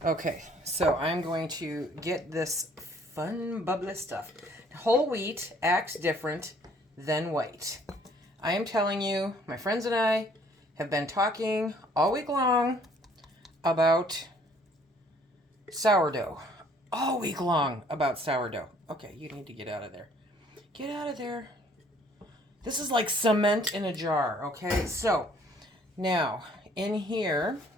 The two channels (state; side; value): normal; both; correlation 0.60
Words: Okay, so I'm going to get this fun, bubbly stuff. Whole wheat acts different than white. I am telling you, my friends and I have been talking all week long about sourdough. All week long about sourdough. Okay, you need to get out of there. Get out of there. This is like cement in a jar, okay? So now in here,